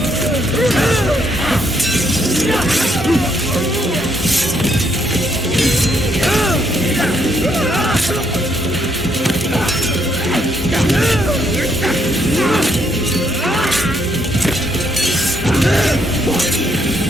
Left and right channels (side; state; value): both; normal; correlation 0.73